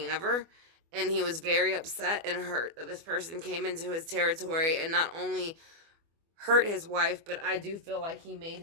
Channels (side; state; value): left; late; 24 ms